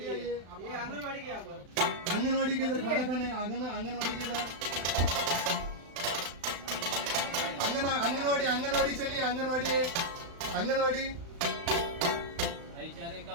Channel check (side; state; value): left; late; 35 ms